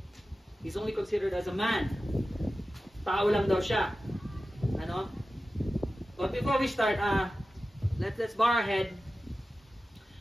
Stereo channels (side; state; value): both; normal; correlation 0.94